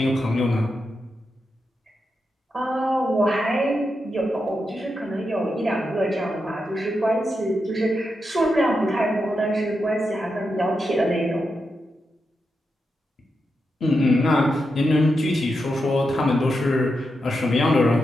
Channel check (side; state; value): both; normal; correlation 0.87